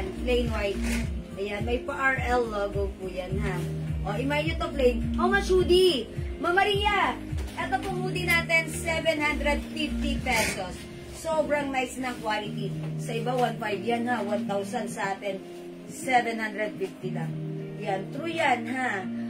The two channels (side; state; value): both; identical; correlation 1.00